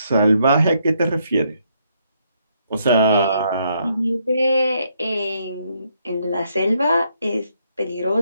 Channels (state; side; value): inverted; both; correlation -0.73